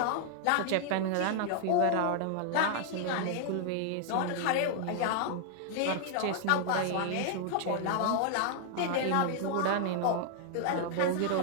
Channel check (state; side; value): different; both; correlation -0.01